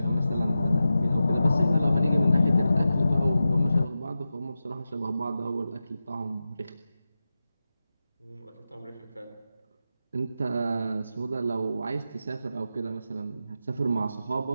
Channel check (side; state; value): both; inverted; correlation -0.92